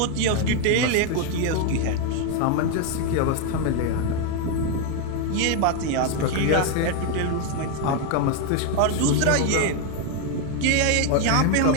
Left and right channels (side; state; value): both; different; correlation 0.01